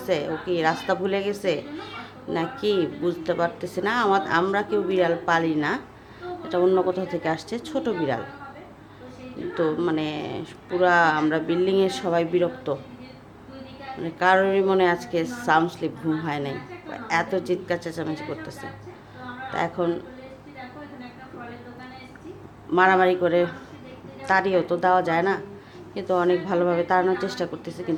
ও কি রাস্তা ভুলে গেছে নাকি বুঝতে পারতেছি না। আমরা কেউ বিড়াল পালি না, এটা অন্য কোথাও থেকে আসছে ছোট বিড়াল। তো মানে পুরা আমরা বিল্ডিংয়ের সবাই বিরক্ত, মানে কারোরই মনে আজকে সাউন্ড স্লিপ ঘুম হয় নাই, এত চিৎকার চেঁচামেচি করতেছে। তা এখন মারামারি করে তাড়িয়েও তো দেওয়া যায় না, কিন্তু অনেক ভালোভাবে তাড়ানোর চেষ্টা করতেছে,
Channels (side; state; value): both; identical; correlation 1.00